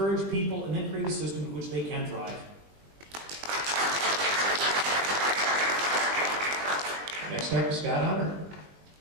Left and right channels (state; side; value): late; left; 21 ms